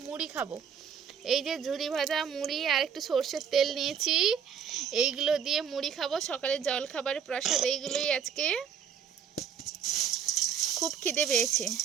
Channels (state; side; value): quieter; left; 7.7 dB